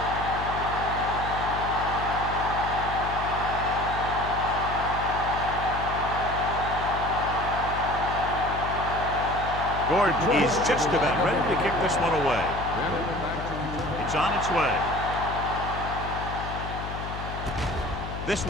Gordon is just about ready to kick this one away. It's on its way. This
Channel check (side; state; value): left; noise; hum, 7 dB below the sound